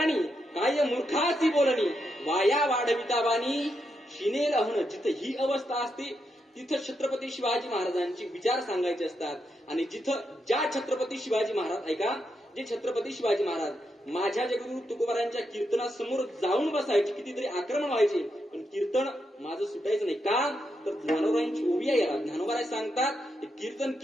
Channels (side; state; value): both; normal; correlation 0.83